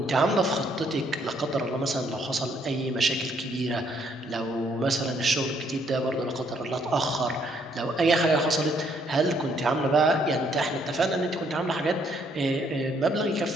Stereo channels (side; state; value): both; normal; correlation 0.69